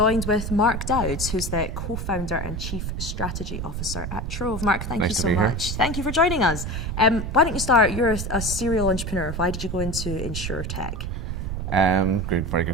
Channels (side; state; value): right; noise; rumble, 4 dB below the sound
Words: with Mark Dowds, who's the co-founder and chief strategy officer at Trov. Mark, thank you so much. Thank you for joining us. Why don't you start? You're a serial entrepreneur. Why did you go into InsurTech? Very